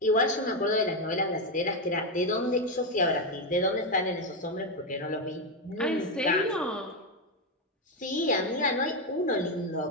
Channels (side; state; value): both; normal; correlation 0.07